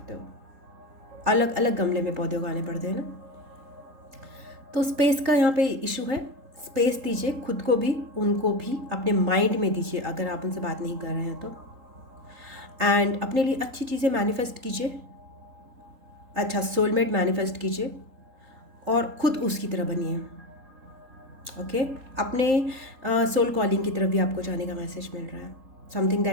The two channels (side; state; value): left; late; 3.8 ms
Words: हो, अलग अलग गमले में पौधे उगाने पड़ते हैं ना। तो स्पेस का यहाँ पे इशू है। स्पेस दीजिए खुद को भी, उनको भी, अपने माइंड में दीजिए अगर आप उनसे बात नहीं कर रहे हैं तो। एंड अपने लिए अच्छी चीज़ें मैनिफेस्ट कीजिए, अच्छा सोलमेट मैनिफेस्ट कीजिए और खुद उसकी तरह बनिए। ओके, अपने सोल कॉलिंग की तरफ भी आपको जाने का मैसेज मिल रहा है, समथिंग